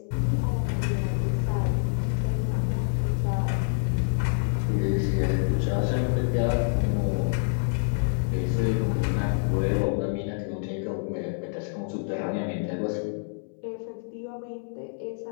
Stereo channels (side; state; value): right; silent; 60 dB below the other